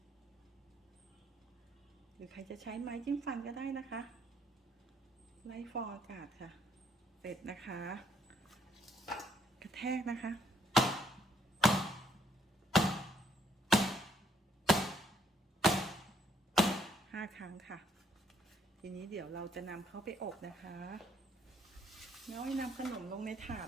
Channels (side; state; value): both; normal; correlation 0.68